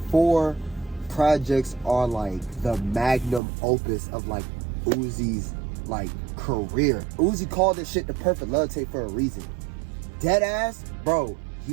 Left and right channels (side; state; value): left; drops out; at 3.4 s